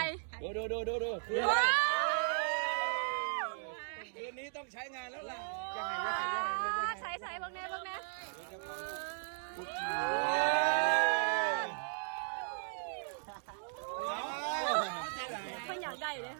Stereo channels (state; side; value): silent; left; digital silence